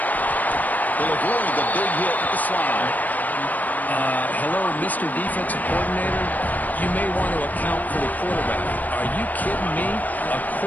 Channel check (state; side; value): late; right; 0.081 ms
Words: They'll avoid the big hit with the slide. Hello, Mr. Defensive Coordinator. You may want to account for the quarterback. Are you kidding me? A